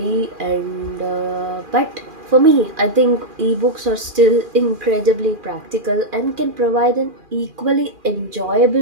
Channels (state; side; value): late; left; 2.4 ms